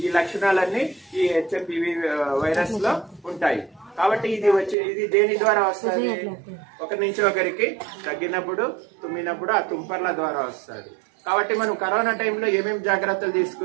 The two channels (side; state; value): left; drops out; at 4.8 s